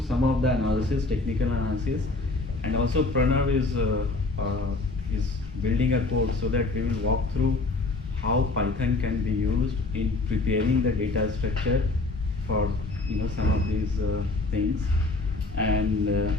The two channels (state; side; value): quieter; right; 3.2 dB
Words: some of the analysis, technical analysis, and also Pranav is building a code so that we will walk through how Python can be used in preparing the data structure for some of these things,